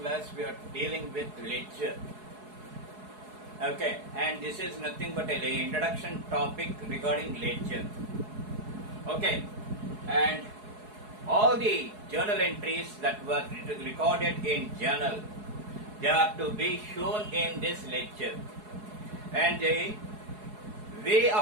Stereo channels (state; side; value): late; left; 4.7 ms